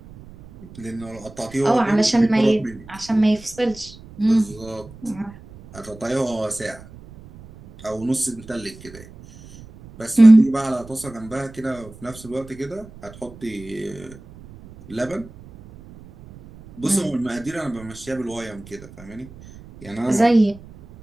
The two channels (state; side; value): noise; right; rumble, 19 dB below the sound